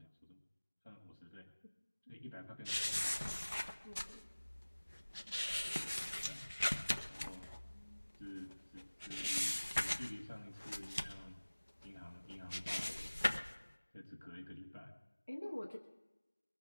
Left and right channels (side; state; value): both; inverted; correlation -1.00